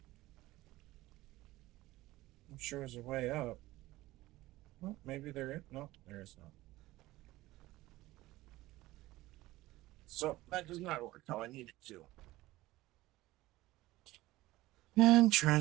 I'm sure there's a way up. Well, maybe there is. No, there is not. So that does not work how I need it to. And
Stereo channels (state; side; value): quieter; left; 17.8 dB